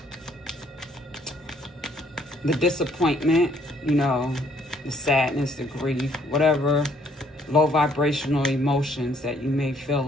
disappointment, you know, the sadness, the grief, whatever low vibrational emotions that you may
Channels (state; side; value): normal; both; correlation 0.65